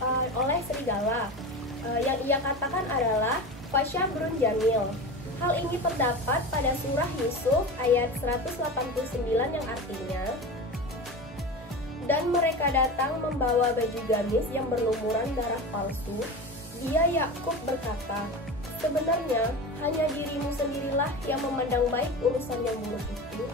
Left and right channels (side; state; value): both; normal; correlation 0.28